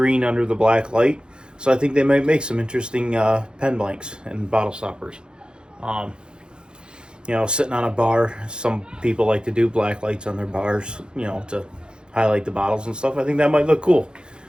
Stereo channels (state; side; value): late; left; 0.049 ms